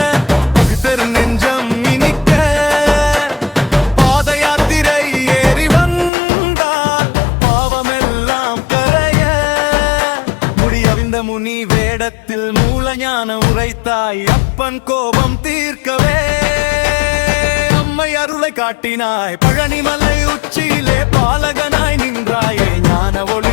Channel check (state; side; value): drops out; right; at 6.1 s